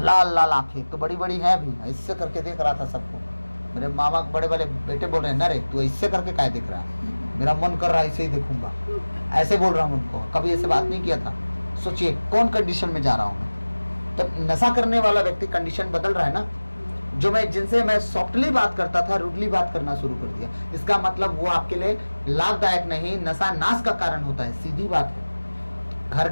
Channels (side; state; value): both; inverted; correlation -1.00